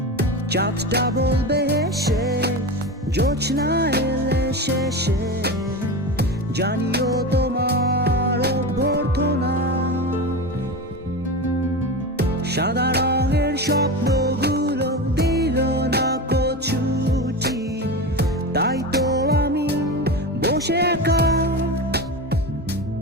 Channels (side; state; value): both; normal; correlation 0.24